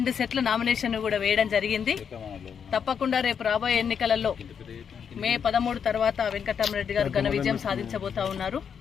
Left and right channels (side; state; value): right; quieter; 7.3 dB